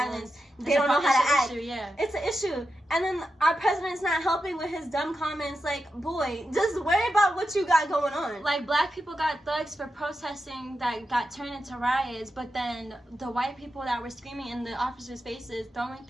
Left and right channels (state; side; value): normal; both; correlation 0.89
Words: they don't know how to act. It's an issue. And then our president's not helping with his dumb comments. Like, boy, just worry about what you got going on. Like, black people got thugs for protesting that got turned into riots, but then the white people that were screaming in the officers' faces, throwing